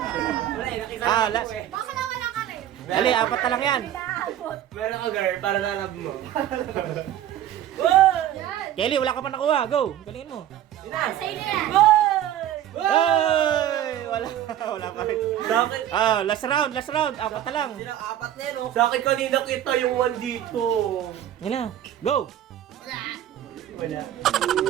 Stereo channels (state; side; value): quieter; left; 11.6 dB